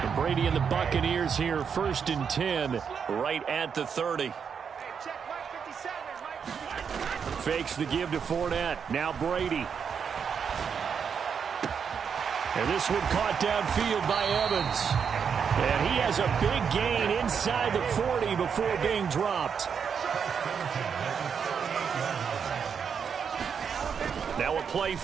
Brady and the Buccaneers here, 1st and 10, right at the 30. Fakes the give to Fournette. Now Brady. And this one caught downfield by Evans. And he has a big gain inside the 40 before being dropped. Now a play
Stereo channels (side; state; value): left; quieter; 6.8 dB